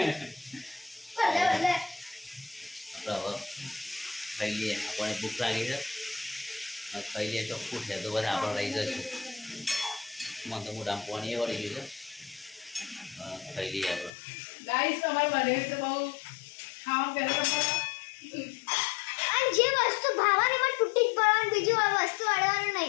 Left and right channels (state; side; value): drops out; right; at 14.1 s